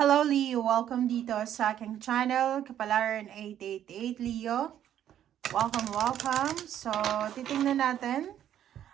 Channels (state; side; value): quieter; left; 10.7 dB